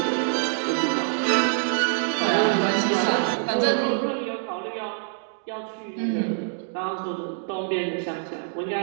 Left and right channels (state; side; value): silent; left; digital silence